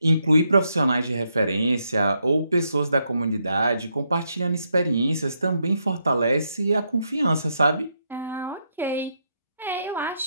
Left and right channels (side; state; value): both; inverted; correlation -0.79